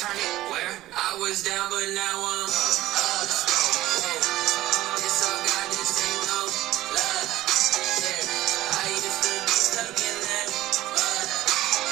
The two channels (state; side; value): quieter; left; 15.7 dB